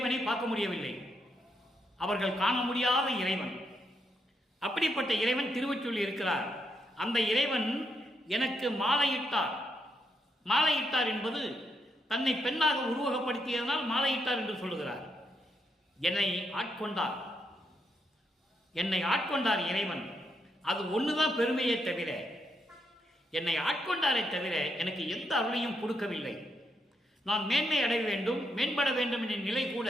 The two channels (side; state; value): both; normal; correlation 0.79